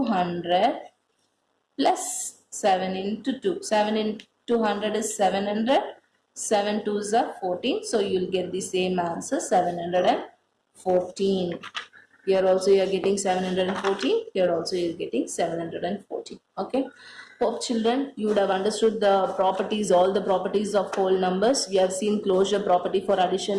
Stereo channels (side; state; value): both; identical; correlation 1.00